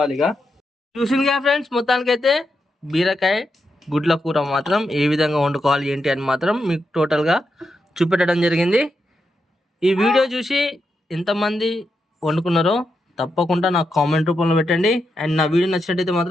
ఇక చూసింది కదా ఫ్రెండ్స్, మొత్తానికైతే బీరకాయ గుడ్ల కూర మాత్రం ఏ విధంగా వండుకోవాలి ఏంటి అని మాత్రం మీకు టోటల్గా చూపెట్టడం జరిగింది. ఈ వీడియో చూసి ఎంతమంది వండుకున్నారో తప్పకుండా నాకు కామెంట్ రూపంలో పెట్టండి. అండ్ నా వీడియో నచ్చినట్టయితే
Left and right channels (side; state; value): both; normal; correlation 0.85